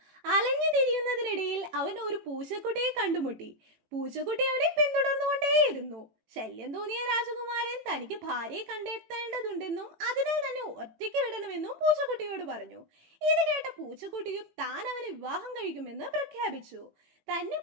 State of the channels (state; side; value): late; left; 18 ms